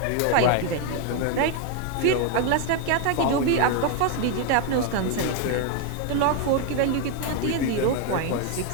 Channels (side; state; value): both; different; correlation 0.01